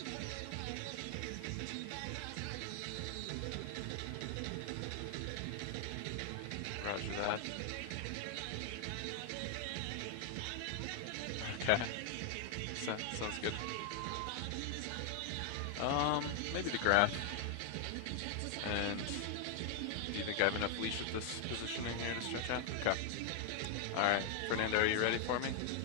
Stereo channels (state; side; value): different; both; correlation 0.00